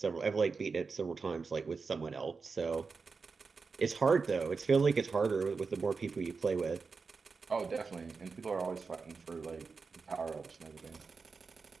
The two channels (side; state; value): left; quieter; 4.8 dB